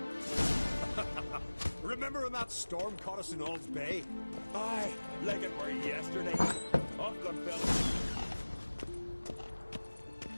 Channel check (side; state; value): both; inverted; correlation -1.00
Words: Remember when that storm caught us in Ald's Bay? Aye, like it were yesterday. Off gun fellas.